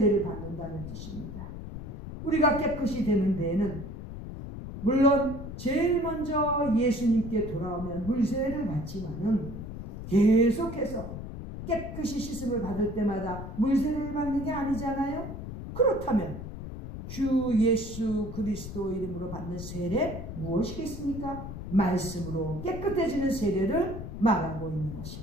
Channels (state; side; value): noise; left; rumble, 9 dB below the sound